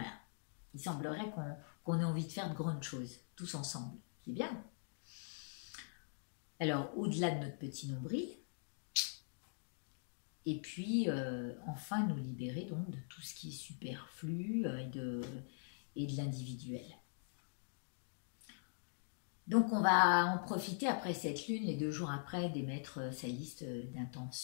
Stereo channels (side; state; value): right; silent; digital silence